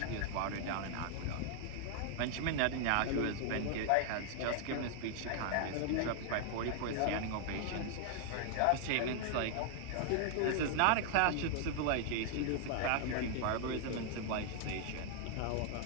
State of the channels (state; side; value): different; both; correlation 0.00